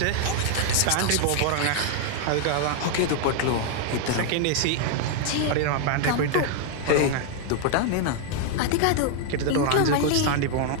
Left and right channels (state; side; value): different; both; correlation 0.00